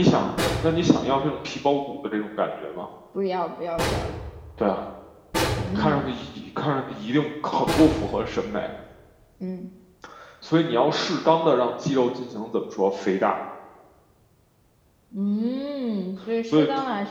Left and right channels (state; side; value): identical; both; correlation 1.00